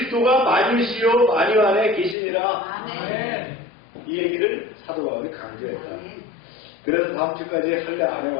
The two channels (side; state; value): right; drops out; at 2.1 s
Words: 만유시요 만유 안에 계시니라. 이 얘기를 사도 바울이 강조했다. 그래서 다음 주까지 할례 안